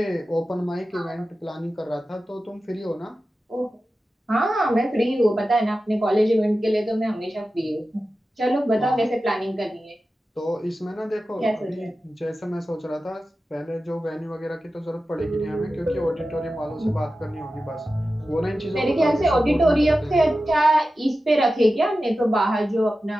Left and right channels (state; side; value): normal; both; correlation 0.93